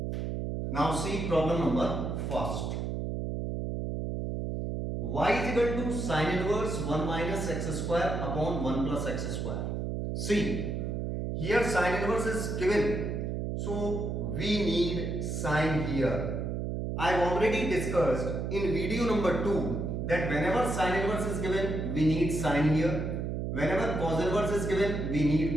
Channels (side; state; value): right; noise; hum, 2 dB below the sound